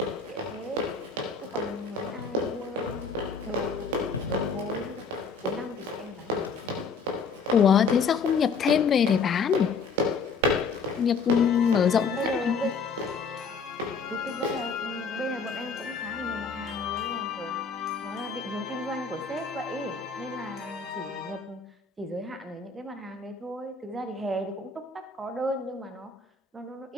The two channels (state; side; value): quieter; right; 4.9 dB